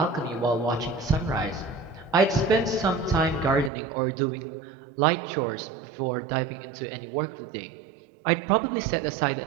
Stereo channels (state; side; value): drops out; left; at 3.7 s